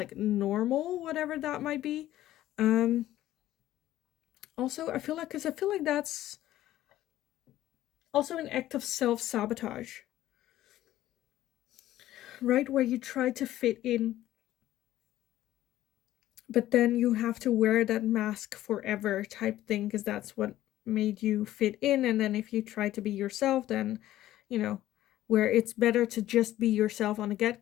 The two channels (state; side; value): quieter; right; 14.0 dB